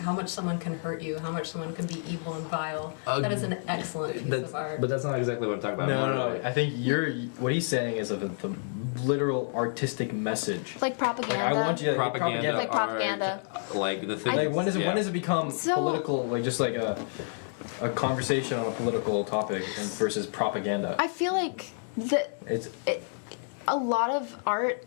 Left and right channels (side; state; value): right; silent; digital silence